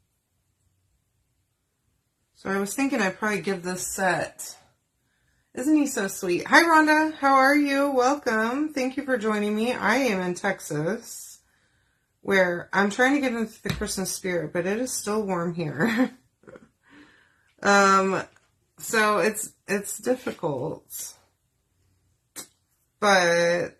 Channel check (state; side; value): identical; both; correlation 1.00